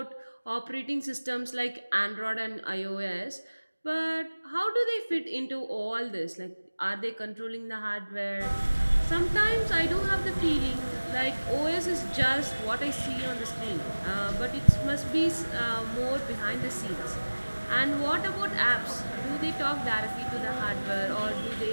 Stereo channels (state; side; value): inverted; both; correlation -1.00